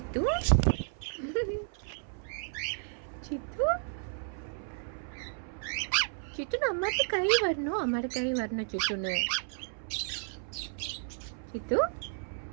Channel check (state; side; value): silent; left; 56 dB below the other